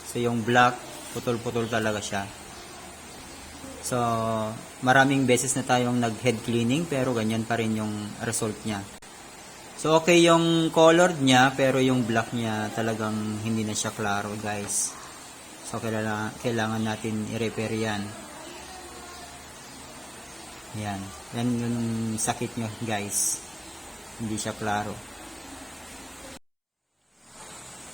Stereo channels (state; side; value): identical; both; correlation 1.00